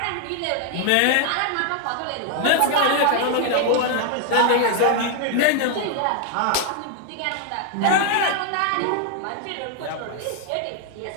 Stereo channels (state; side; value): different; both; correlation 0.00